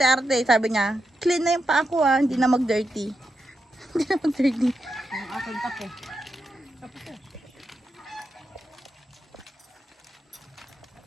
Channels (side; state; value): both; normal; correlation 0.86